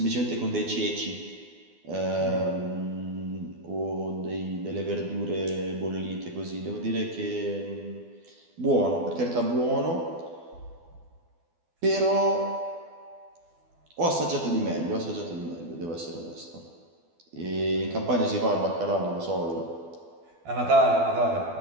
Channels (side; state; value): left; late; 12 ms